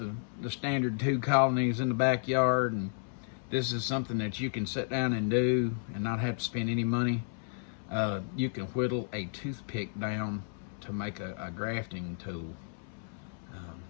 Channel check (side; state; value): right; silent; 56 dB below the other